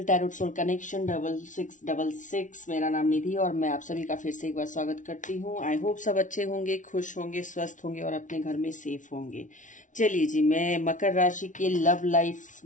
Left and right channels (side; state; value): right; late; 0.37 ms